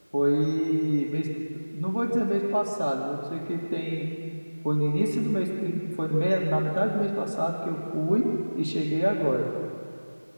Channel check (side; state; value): both; inverted; correlation -1.00